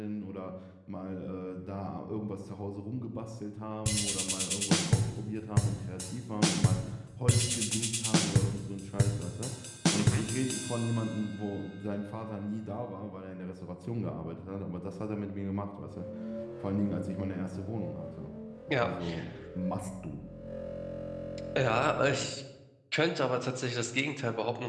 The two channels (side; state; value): both; identical; correlation 1.00